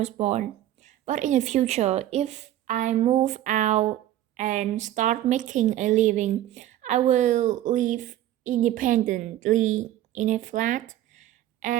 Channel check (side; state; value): left; quieter; 13.1 dB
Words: born. But in the future, if I move out and start making a living, I will live independently in a flat,